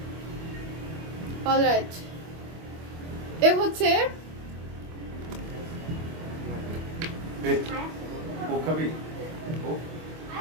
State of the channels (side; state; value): left; late; 25 ms